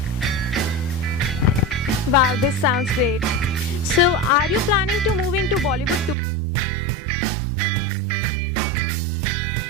Wow, this sounds great. So, are you planning to move into Bollywood too? Oh, who doesn't want that?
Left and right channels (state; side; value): drops out; left; at 6.2 s